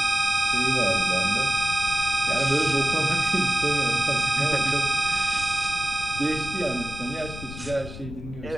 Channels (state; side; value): noise; left; rumble, 12 dB below the sound